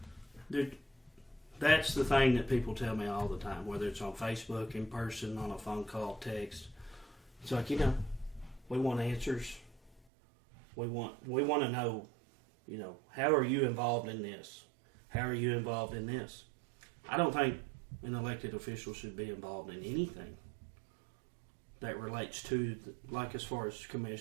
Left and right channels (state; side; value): drops out; left; at 10.0 s